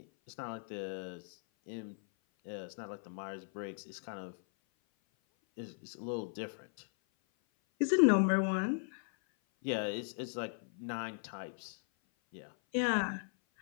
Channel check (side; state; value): right; silent; 53 dB below the other